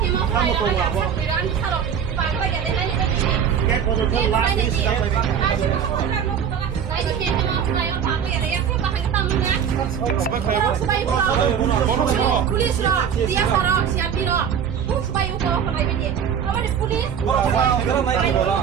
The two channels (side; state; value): left; quieter; 7.9 dB